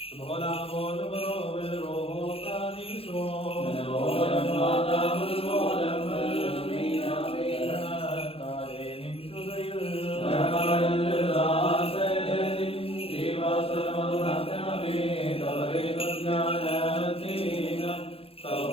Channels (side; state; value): right; late; 0.27 ms